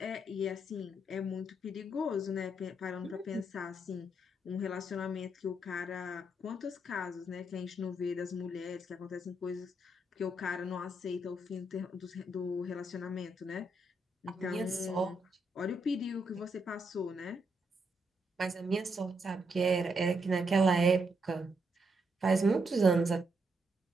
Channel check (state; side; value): normal; both; correlation 0.78